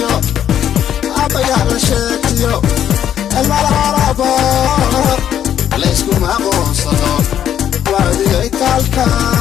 عبيها لشيتيو المرابو ليسكو معقون صدور وادي ايتالكا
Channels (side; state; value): right; quieter; 10.1 dB